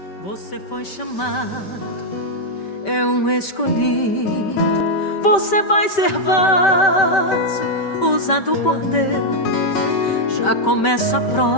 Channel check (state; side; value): late; right; 5.2 ms